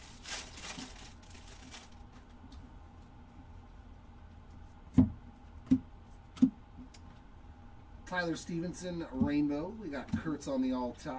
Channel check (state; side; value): identical; both; correlation 1.00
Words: Tyler Stevenson, rainbow. We got Kurtz on the all